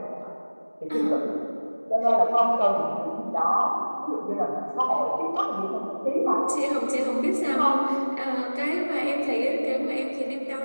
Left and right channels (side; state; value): both; inverted; correlation -1.00